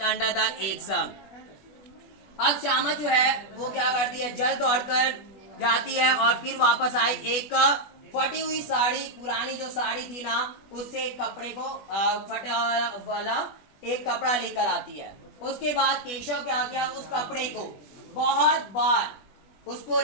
under the eggs. अब श्यामा जो है वो क्या करती है, जल्द दौड़कर जाती है और फिर वापस आई, एक फटी हुई साड़ी, पुरानी जो साड़ी थी ना उससे एक कपड़े को फटा वाला एक कपड़ा लेकर आती है। उसके बाद केशव क्या किया, उस कपड़े को बहुत बार उसको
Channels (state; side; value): late; right; 20 ms